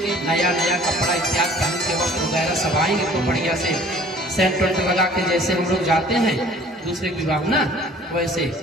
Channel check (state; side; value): normal; both; correlation 0.51